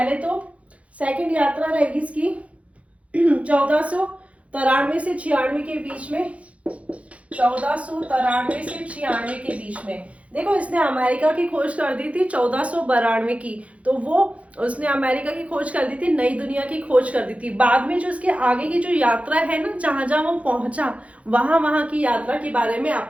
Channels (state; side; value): late; left; 0.064 ms